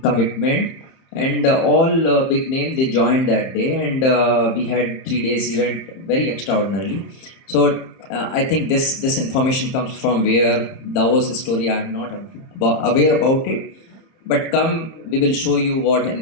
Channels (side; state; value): right; late; 30 ms